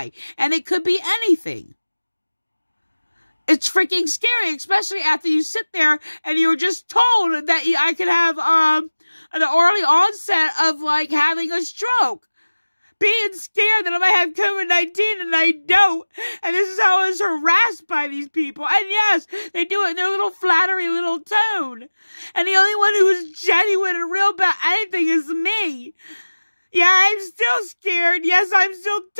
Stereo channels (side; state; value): both; inverted; correlation -1.00